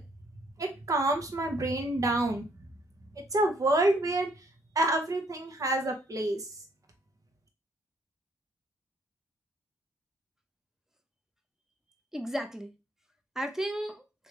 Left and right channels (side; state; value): both; normal; correlation 0.67